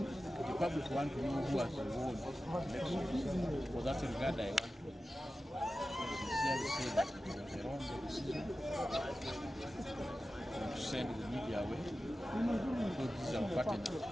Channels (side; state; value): both; normal; correlation 0.94